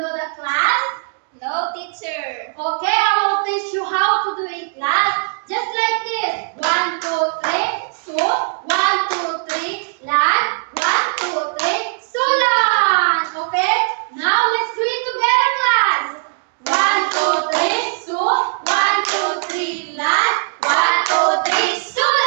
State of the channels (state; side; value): silent; left; 67 dB below the other